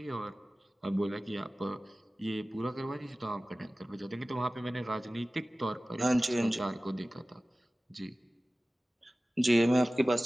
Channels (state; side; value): normal; both; correlation 0.97